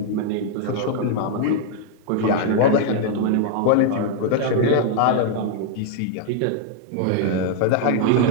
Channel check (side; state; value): both; different; correlation 0.00